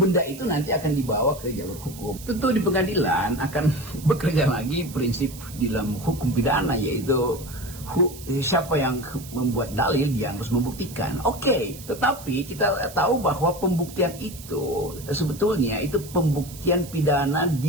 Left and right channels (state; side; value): noise; right; hiss, 16 dB below the sound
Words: itu nanti akan dibawa ke jalur hukum. Tentu di pengadilan akan bekerja lagi prinsip di dalam hukum pidana, yaitu siapa yang membuat dalil dia harus membuktikan. Oke, tetapi kita tahu bahwa pembuktian itu sebetulnya itu pembuktian pidana di